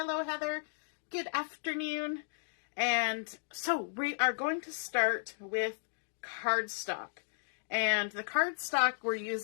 Heather. Good afternoon. And so we are going to start with cardstock. And the cardstock we're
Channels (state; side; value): silent; right; digital silence